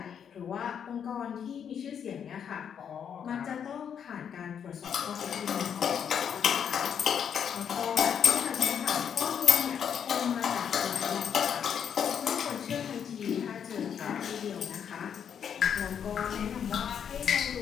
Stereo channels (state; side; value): quieter; right; 8.0 dB